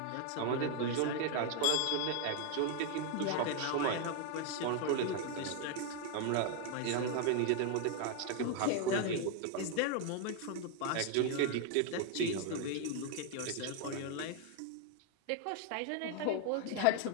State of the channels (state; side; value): different; both; correlation 0.01